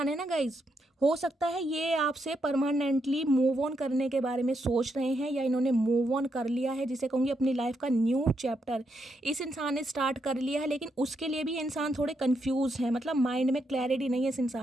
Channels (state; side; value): normal; both; correlation 0.80